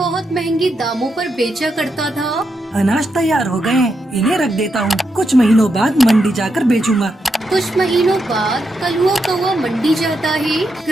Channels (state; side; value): normal; both; correlation 0.83